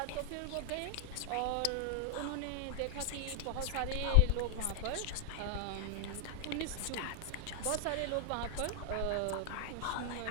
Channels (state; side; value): different; both; correlation 0.00